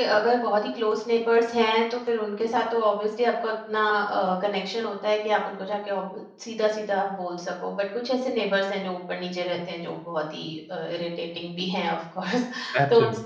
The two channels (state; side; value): identical; both; correlation 1.00